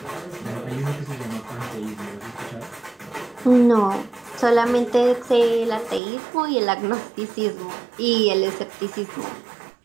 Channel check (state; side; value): drops out; left; at 6.0 s